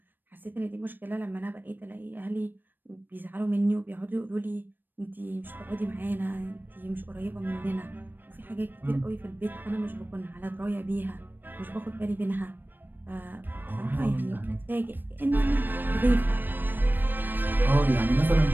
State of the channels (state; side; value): late; left; 0.093 ms